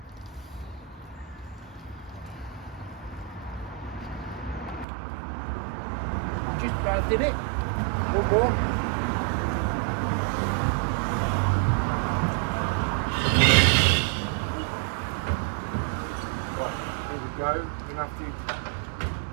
Just about did it. One more. Right, here we go. You're gonna have to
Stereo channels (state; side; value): drops out; left; at 4.9 s